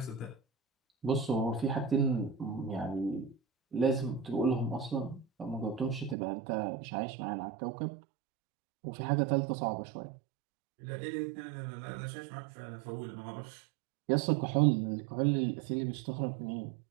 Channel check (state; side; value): drops out; left; at 6.2 s